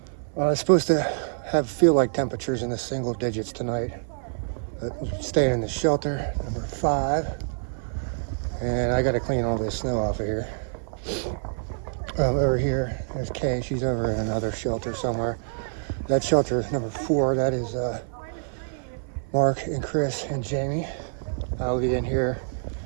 It's supposed to feel like temperatures in the single digits tonight. Staying in the shelter, number 5. And I got to clean all this snow off of here. Over here, there's Kay. She's over in another shelter somewhere. That shelter is number 4. That is Mark and Chris and Jamie. I'll be in here.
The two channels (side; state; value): left; silent; 57 dB below the other